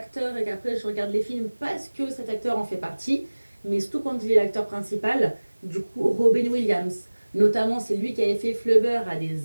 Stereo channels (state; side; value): inverted; both; correlation -1.00